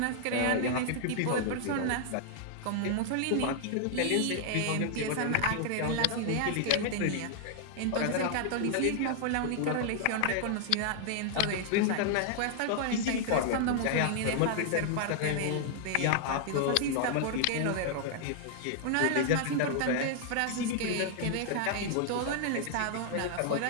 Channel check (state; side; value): different; both; correlation -0.01